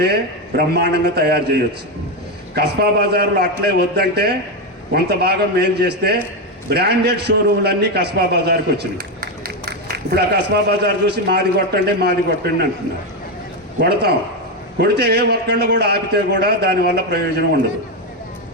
బ్రహ్మాండంగా తయారు చేయొచ్చు. కస్బా బజార్లో అట్లే వద్దంటే కొంత భాగం మేలు చేస్తే బ్రాండెడ్ షోరూమ్లన్నీ కస్బా బజార్కి వచ్చినాయి. ఇప్పుడు ఆ కస్బా బజార్ చూసి మాది కొట్టండి అంటున్నారు. కొడతాం, కొడితే ఏ ఒక్కళ్ళు కూడా ఆపితే కూడా దానివల్ల ప్రయోజనం ఉండదు.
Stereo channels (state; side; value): normal; both; correlation 0.09